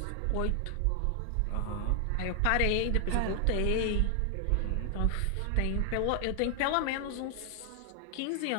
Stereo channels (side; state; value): both; different; correlation 0.00